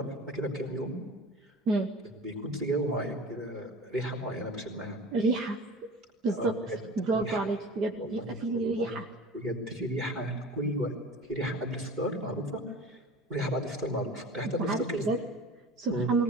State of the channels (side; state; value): both; normal; correlation 0.38